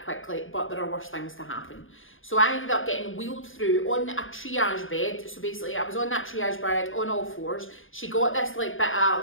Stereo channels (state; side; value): late; right; 0.58 ms